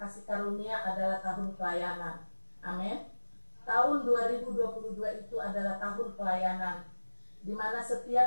Karunia adalah tahun pelayanan. Amin. Tahun 2022 itu adalah tahun pelayanan, di mana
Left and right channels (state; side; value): inverted; both; correlation -1.00